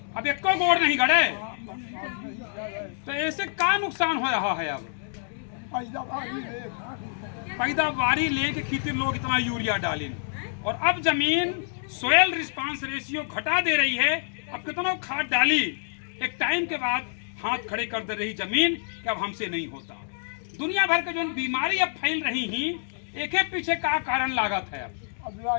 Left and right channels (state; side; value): silent; right; digital silence